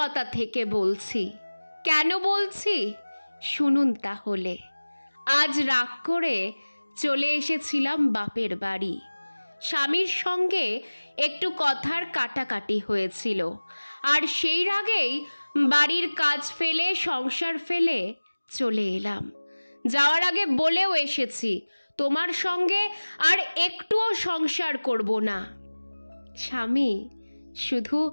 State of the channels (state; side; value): inverted; both; correlation -1.00